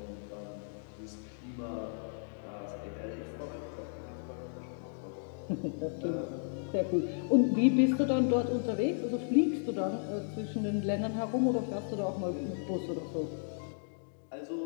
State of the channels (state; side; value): silent; right; digital silence